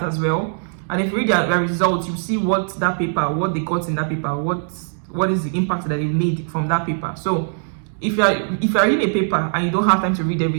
as well. And if you read their results, you see what they got in that paper, what is the impact that they made from that paper. So if you're reading a paper and you don't have time to read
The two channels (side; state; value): left; silent; digital silence